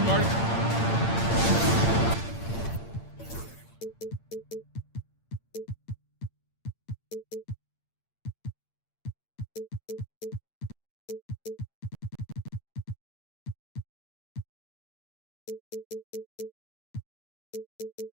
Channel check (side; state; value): right; late; 8.8 ms